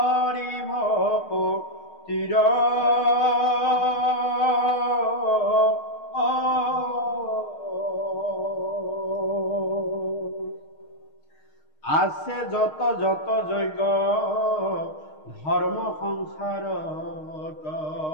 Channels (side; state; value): right; late; 6.5 ms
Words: ভক্তিৰ আছে যত যত যজ্ঞ ধৰ্ম সংসাৰত